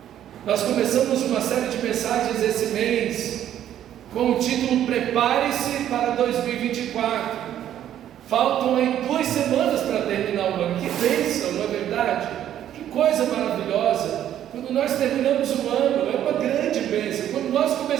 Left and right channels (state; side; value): quieter; left; 11.1 dB